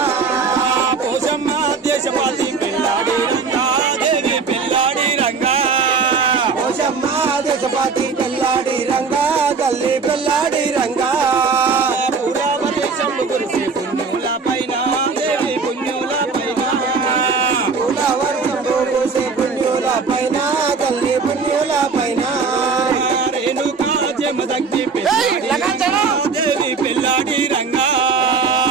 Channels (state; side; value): quieter; left; 4.9 dB